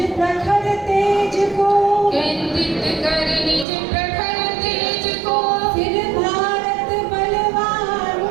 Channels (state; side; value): drops out; left; at 3.7 s